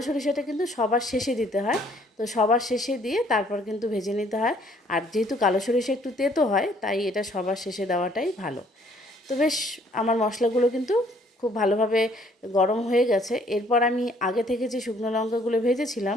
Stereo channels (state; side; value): normal; both; correlation 0.62